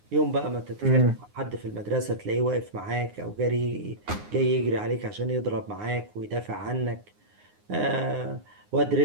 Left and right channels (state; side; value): late; left; 9.7 ms